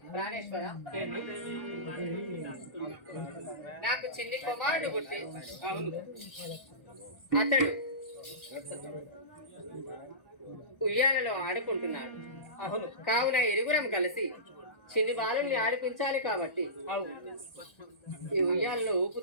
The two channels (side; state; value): right; late; 1.4 ms